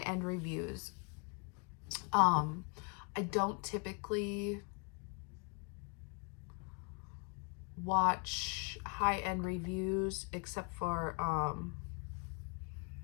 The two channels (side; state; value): right; quieter; 37.4 dB